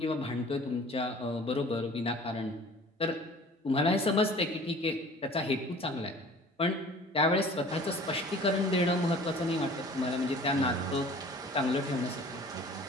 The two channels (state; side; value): normal; both; correlation 0.47